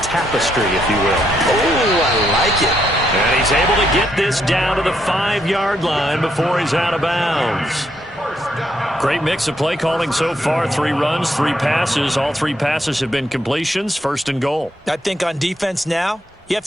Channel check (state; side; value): normal; both; correlation 0.76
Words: tapestry, if you will. Oh, I like it. And he's able to get this down to the 5-yard line before he's out of bounds. Great mix of play calling so far. 3 runs, 3 passes. All 3 passes have been completions. 1st and goal. I think on defense now, you have